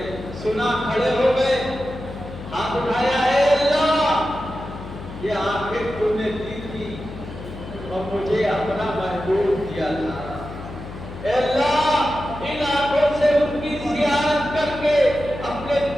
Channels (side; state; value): left; noise; hum, 12 dB below the sound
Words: سنا کھڑے ہو گئے، ہاتھ اٹھایا اے اللہ یہ آنکھیں تو نے دی تھی اور مجھے اپنا محبوب دیا تھا، اے اللہ ان آنکھوں سے ان کی زیارت کر کے اپنے